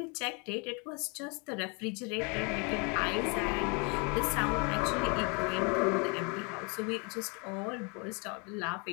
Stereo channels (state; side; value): quieter; right; 33.1 dB